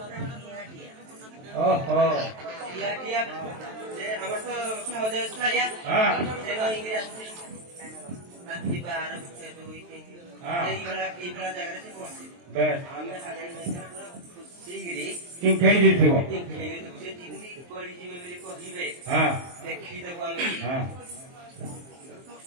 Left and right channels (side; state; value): left; late; 23 ms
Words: ओहो আমার তো সহজে ছাড়িয়া হ্যাঁ রাত্রি 12 2 হ্যাঁ এইগুলা জায়গাতে পৌঁছি বেশ আমি আগে সিগরি তিন খেই দিছিও তিন খেই দিছি তিন পড়ি জিবে বলি কহিবে হ্যাঁ দেখি দেব আমি হ্যাঁ